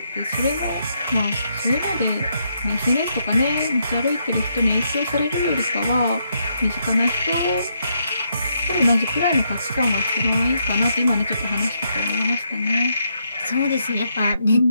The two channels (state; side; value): inverted; both; correlation -0.77